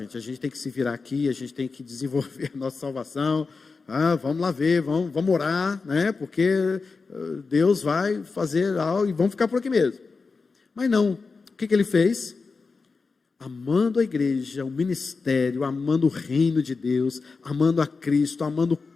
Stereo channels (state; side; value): quieter; right; 4.4 dB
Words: a gente tem que se virar aqui, a gente tem que desenvolver a nossa salvação, vamos lá ver, vamos orar, né, porque Deus vai fazer algo e vamos ficar por aqui mesmo. Mas não, o que ele fez? Amando a igreja, o ministério, amando o reino de Deus, amando a Cristo, amando o